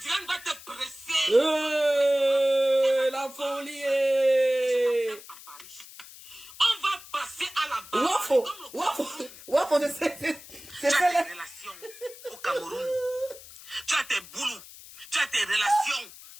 va te presser. La folie. On va passer à la barre. Wafo, c'est ça là. Tu as tes relations au Cameroun. Tu as tes boulots. Tu as tes relations.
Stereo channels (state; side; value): noise; left; hiss, 18 dB below the sound